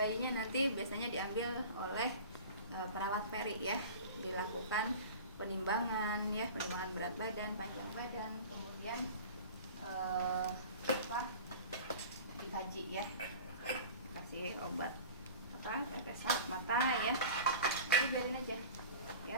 nanti biasanya diambil oleh perawat peri ya, dilakukan penimbangan ya, penimbangan berat badan, panjang badan, kemudian dikaji ya, kasih obat tetes mata ya, itu biarin aja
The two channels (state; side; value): inverted; both; correlation -0.38